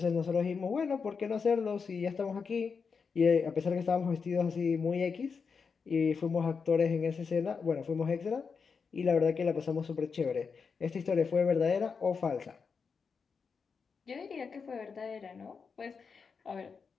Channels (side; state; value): right; quieter; 5.5 dB